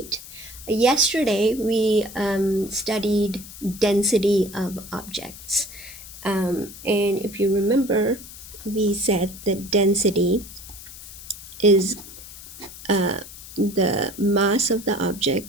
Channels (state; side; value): noise; left; hiss, 15 dB below the sound